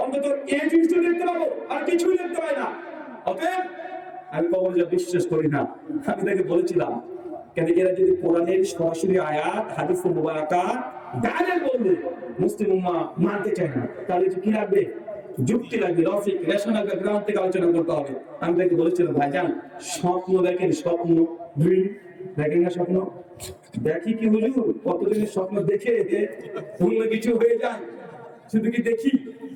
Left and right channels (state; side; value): identical; both; correlation 1.00